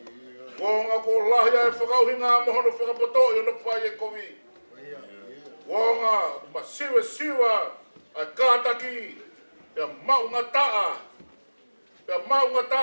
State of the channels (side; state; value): both; inverted; correlation -1.00